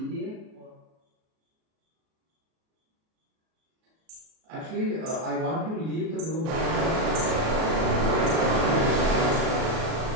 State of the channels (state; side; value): late; left; 37 ms